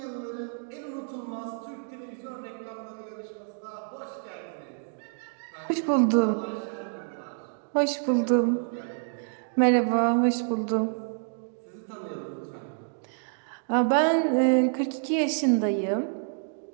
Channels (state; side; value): silent; left; digital silence